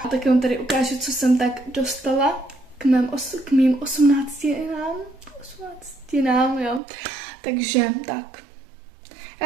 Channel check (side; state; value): left; drops out; at 6.8 s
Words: tak vám tady ukážu, co jsem tak dostala k mým 18. jo. Takže tak.